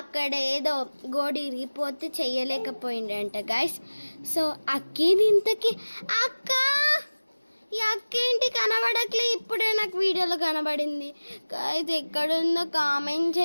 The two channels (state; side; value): inverted; both; correlation -1.00